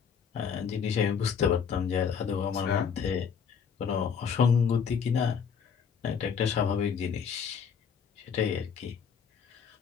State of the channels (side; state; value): right; quieter; 6.8 dB